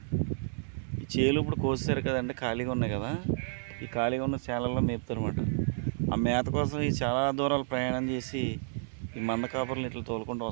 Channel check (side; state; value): left; silent; 57 dB below the other